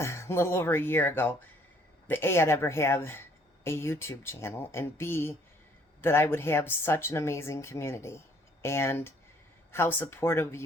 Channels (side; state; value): both; normal; correlation 0.62